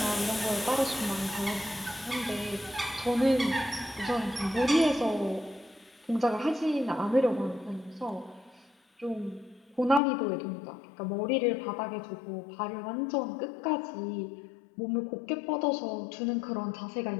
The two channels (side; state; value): right; drops out; at 10.0 s